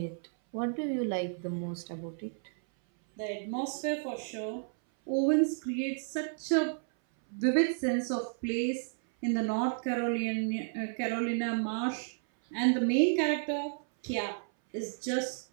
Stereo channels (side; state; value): left; silent; 57 dB below the other